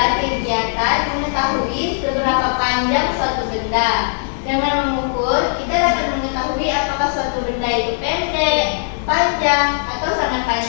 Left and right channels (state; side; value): silent; right; digital silence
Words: kegiatan mengetahui seberapa panjang suatu benda. Dengan mengukur, kita dapat mengetahui apakah suatu benda itu pendek, panjang, atau sangat